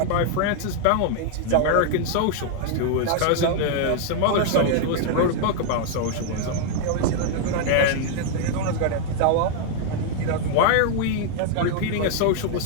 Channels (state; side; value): different; both; correlation 0.00